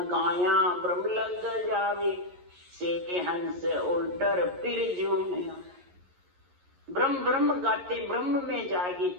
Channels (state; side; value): late; left; 11 ms